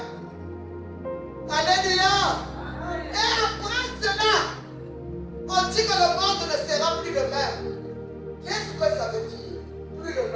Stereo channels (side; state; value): both; identical; correlation 1.00